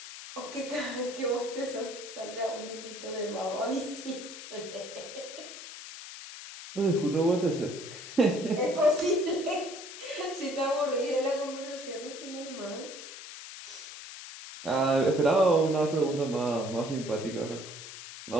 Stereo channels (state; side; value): noise; left; hiss, 12 dB below the sound